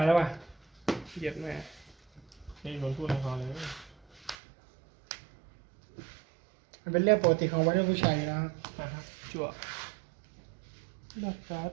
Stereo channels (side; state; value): left; drops out; at 4.4 s